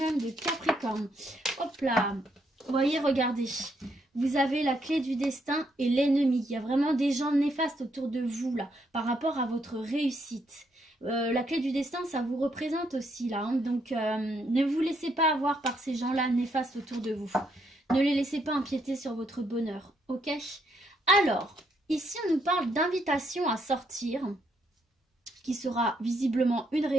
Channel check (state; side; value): normal; both; correlation 0.75